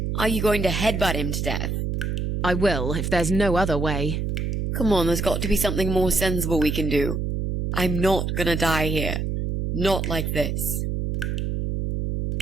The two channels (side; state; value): right; noise; hum, 1 dB below the sound